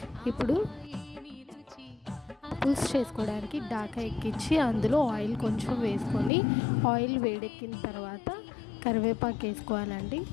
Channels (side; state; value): right; drops out; at 6.3 s